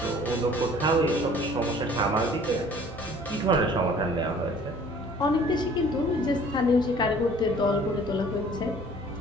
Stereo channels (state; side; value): normal; both; correlation 0.52